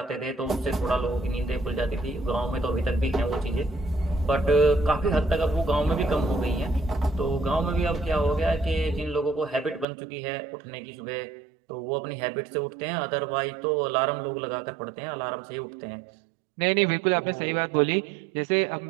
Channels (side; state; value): left; drops out; at 9.9 s